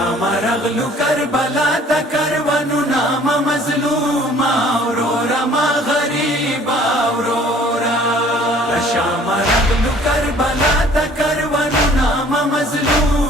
رغلو کربلا تا کروانو نام مظلوما اورورا ما غریبا اورورا لشام رغلو کربلا تا کروانو نام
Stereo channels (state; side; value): normal; both; correlation 0.54